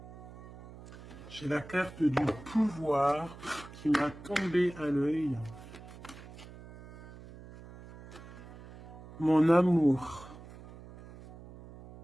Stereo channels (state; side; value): noise; right; hum, 16 dB below the sound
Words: J'ai la carte du pouvoir qui m'a tombé à l'œil. Mon amour.